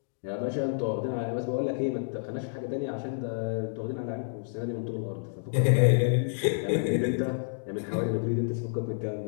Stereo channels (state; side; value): silent; right; digital silence